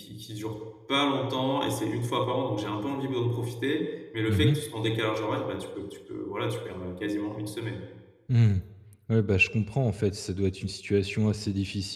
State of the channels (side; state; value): both; identical; correlation 1.00